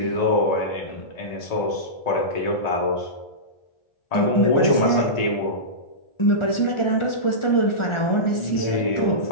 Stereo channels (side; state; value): right; late; 1.4 ms